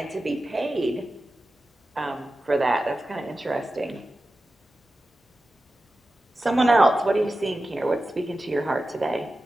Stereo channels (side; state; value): both; normal; correlation 0.93